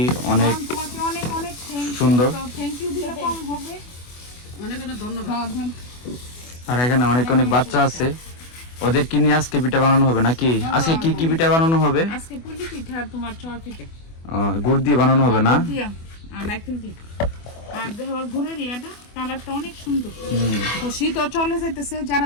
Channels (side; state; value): right; late; 24 ms